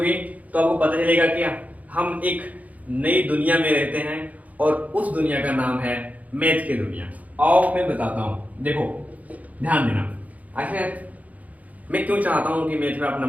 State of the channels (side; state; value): left; late; 0.074 ms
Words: तो आपको पता चलेगा कि हम एक नई दुनिया में रहते हैं और उस दुनिया का नाम है मैथ की दुनिया। आओ मैं बताता हूँ, देखो ध्यान देना। आखिर मैं क्यों चाहता हूँ कि मैथ में आप